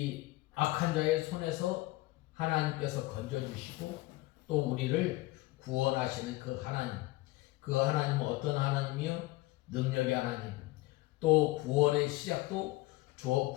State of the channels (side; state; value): right; quieter; 19.9 dB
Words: 악한 자의 손에서 하나님께서 건져주시고 또 우리를 구원하시는 그 하나님은 어떤 하나님이요? 능력의 하나님, 또 구원의 시작도